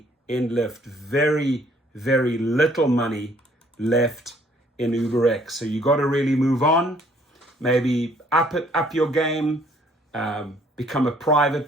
in Lyft. Very, very little money left in UberX. So you got to really move on. Maybe up your game, become a private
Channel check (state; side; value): normal; both; correlation 0.62